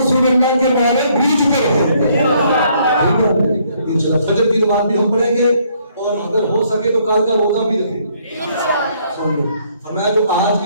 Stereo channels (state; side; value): inverted; both; correlation -0.67